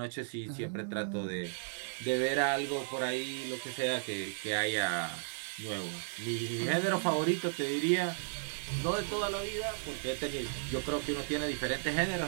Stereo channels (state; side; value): silent; left; 55 dB below the other